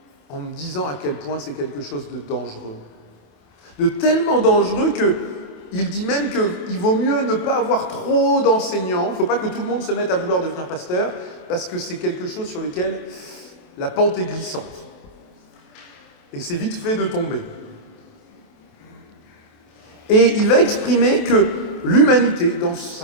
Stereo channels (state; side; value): late; right; 27 ms